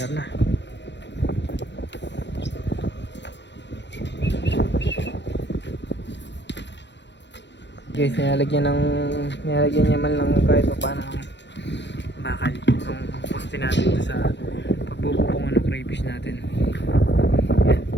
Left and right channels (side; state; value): right; late; 0.52 ms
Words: na. Guys, nilalagyan niya man lang kahit pa paano ng bakal yung poste natin sa pagbububungan ng crayfish natin. Yan.